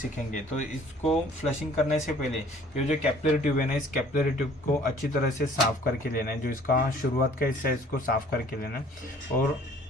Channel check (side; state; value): both; normal; correlation 0.54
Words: तो इसको फ्लशिंग करने से पहले ये जो कैपिलरी ट्यूब है ना, इस कैपिलरी ट्यूब को अच्छी तरह से साफ करके लेना है। जो इसका शुरुआत का हिस्सा है इसको साफ करके लेना है। और